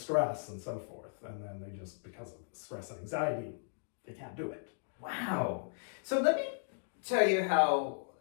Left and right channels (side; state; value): right; silent; digital silence